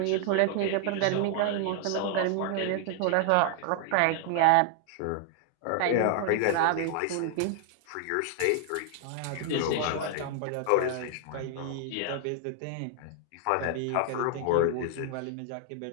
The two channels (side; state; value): both; different; correlation 0.00